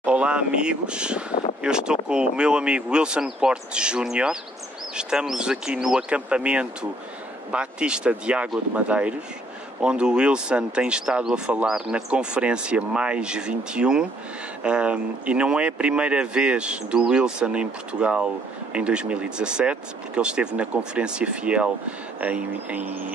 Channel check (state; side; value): normal; both; correlation 0.65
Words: Olá amigos, eu estou com o meu amigo Wilson Porte Júnior. Estamos aqui no acampamento Batista de Água de Madeiros, onde o Wilson tem estado a falar na conferência Mais 21, e não é a primeira vez do Wilson em Portugal em 2017, porque ele esteve na Conferência Fiel